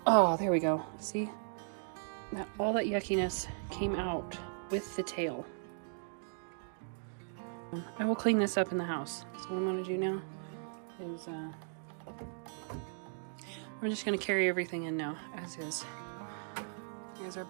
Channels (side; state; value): left; silent; digital silence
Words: Oh, there we go. See? All that yuckiness came out with the tail. I will clean this up in the house. So what I'm gonna do now is we're just gonna carry everything in now as is. Here's our